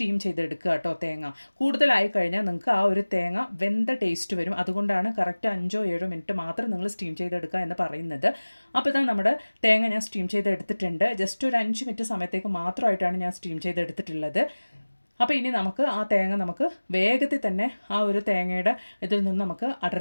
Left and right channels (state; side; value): inverted; both; correlation -1.00